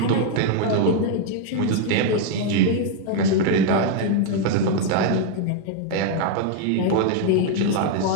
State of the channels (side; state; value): both; different; correlation 0.01